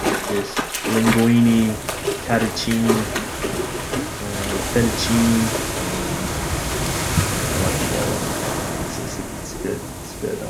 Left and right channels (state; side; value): identical; both; correlation 1.00